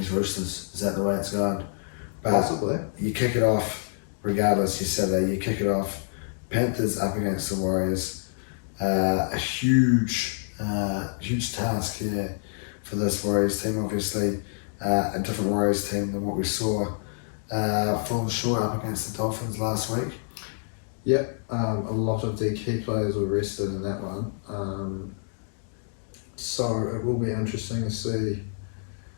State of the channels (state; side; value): silent; right; digital silence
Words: Roosters, is that the way it's going? But possibly. You kick it off, regardless, you Saturday, you kick it off. Panthers up against the Warriors. A huge task here for this Warriors team. Obviously, a different Warriors team than what we saw falling short up against the Dolphins last week. Yep, a lot of the key players were rested in that one. So it will be interesting to see